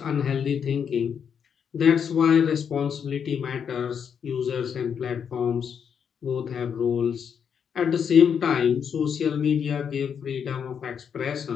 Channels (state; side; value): quieter; right; 7.4 dB